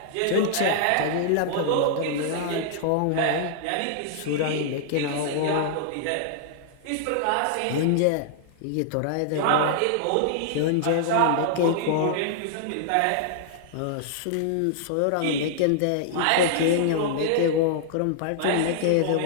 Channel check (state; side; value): different; both; correlation -0.01